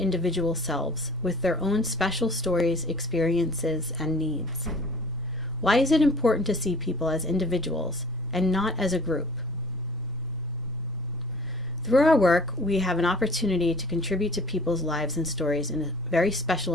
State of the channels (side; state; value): both; normal; correlation 0.48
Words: selves, with their own special stories, experiences, and needs. Why is it important to see people as individuals and not as a group? Through our work, we have an opportunity to contribute to people's lives and stories in a very special